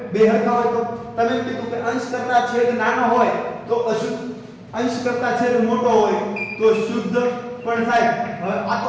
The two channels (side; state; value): both; identical; correlation 1.00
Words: બે હરખા હોય તો તમે એમ કીધું કે અંશ કરતા છેદ નાનો હોય તો અશુદ્ધ અંશ કરતા છેદ મોટો હોય તો શુદ્ધ. પણ સાહેબ હવે આ તો